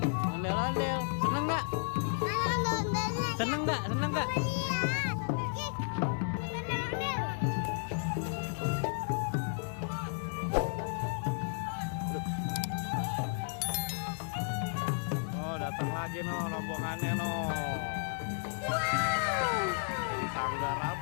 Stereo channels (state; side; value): silent; right; 56 dB below the other